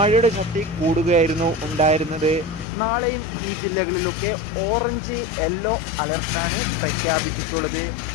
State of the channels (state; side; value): drops out; right; at 2.7 s